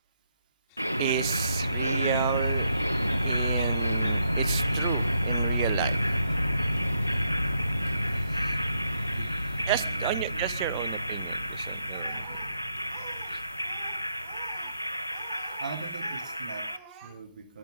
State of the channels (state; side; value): inverted; both; correlation -0.78